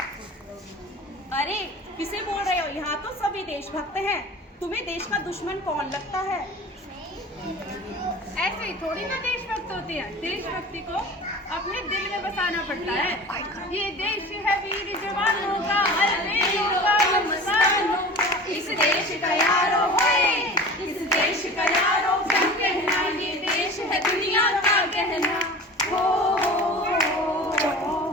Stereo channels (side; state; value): both; normal; correlation 0.37